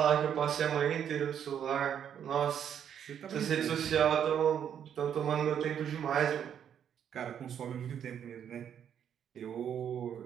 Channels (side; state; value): left; quieter; 8.8 dB